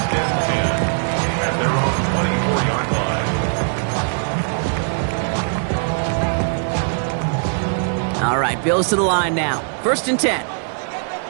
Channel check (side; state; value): left; silent; digital silence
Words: and 10 at their own 24-yard line. All right, Bills to the line now. 1st and 10.